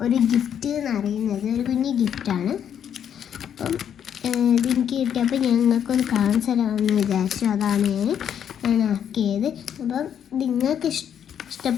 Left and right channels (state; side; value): quieter; right; 8.9 dB